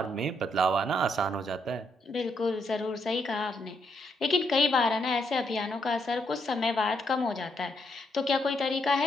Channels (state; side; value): normal; both; correlation 0.76